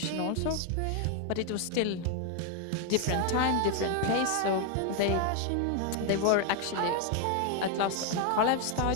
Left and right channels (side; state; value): both; different; correlation 0.01